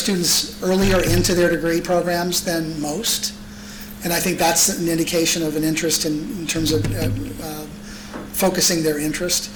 earlier into their degree programs than most, and I think that's an indication of an interest in terms of focusing their interest.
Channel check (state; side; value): identical; both; correlation 1.00